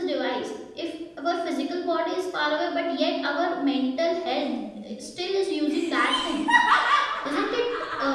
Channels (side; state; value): both; identical; correlation 1.00